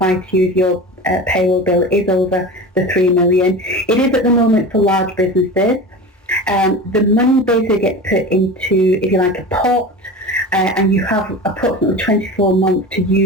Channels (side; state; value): both; normal; correlation 0.31